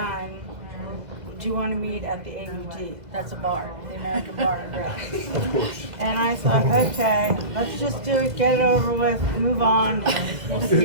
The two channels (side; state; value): left; late; 2.1 ms